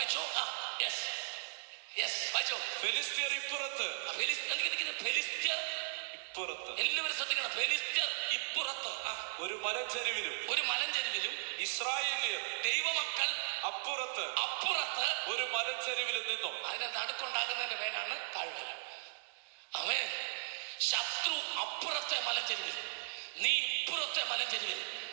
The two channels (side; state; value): left; silent; digital silence